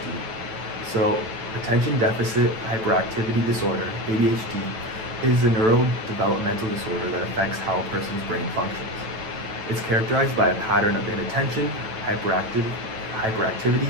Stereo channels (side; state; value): left; late; 9.0 ms